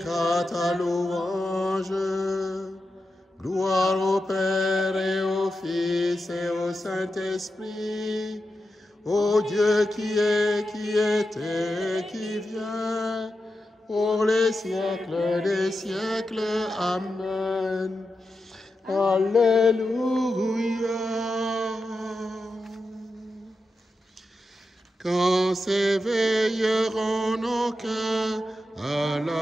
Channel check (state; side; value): normal; both; correlation 0.89